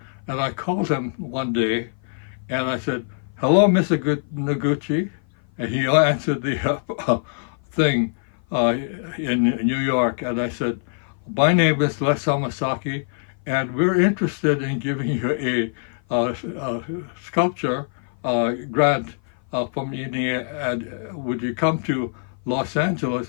and I called him one day, and I said, hello, Mr. Noguchi, and he answered the thing in New York, and I said, my name is Les Hamasaki, and we're interested in giving you a sculpture grant from India, and would you come to Los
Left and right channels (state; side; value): silent; right; 56 dB below the other